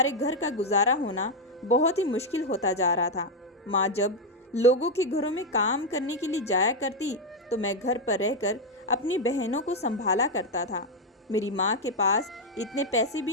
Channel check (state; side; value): normal; both; correlation 0.02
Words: घर का गुजारा होना बहुत ही मुश्किल होता जा रहा था। माँ जब लोगों के घरों में काम करने के लिए जाया करती तो मैं घर पर रहकर अपनी बहनों को संभाला करता था। मेरी माँ के पास इतने पैसे